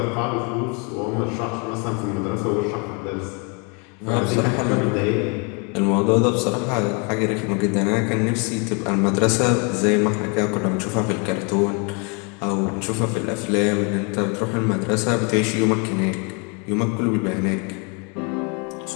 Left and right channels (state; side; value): quieter; right; 34.1 dB